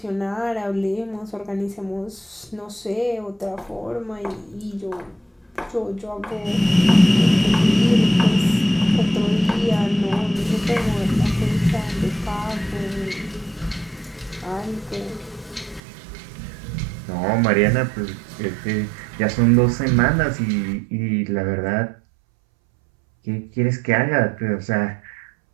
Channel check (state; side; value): drops out; left; at 15.8 s